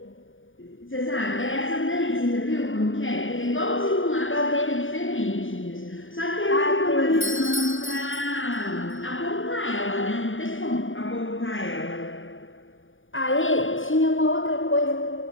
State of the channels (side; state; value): right; late; 0.57 ms